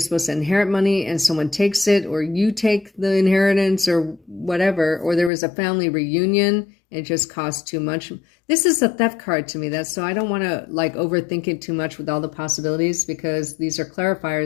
to inherit money and someone takes it, or you take the inheritance or whatever, or there was a family reunion and it just cost too much. This is a theft card to me. So I don't want to like overthink it too much with all the possibilities because these are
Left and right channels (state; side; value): drops out; right; at 5.3 s